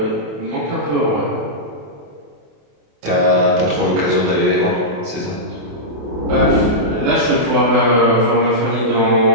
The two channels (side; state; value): left; late; 28 ms